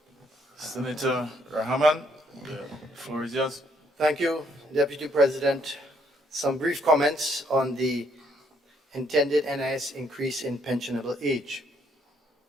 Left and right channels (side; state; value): both; normal; correlation 0.70